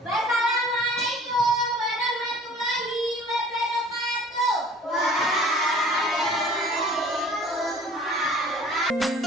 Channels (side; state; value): both; normal; correlation 0.49